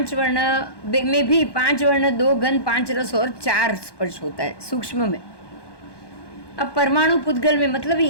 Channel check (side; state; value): right; late; 1.2 ms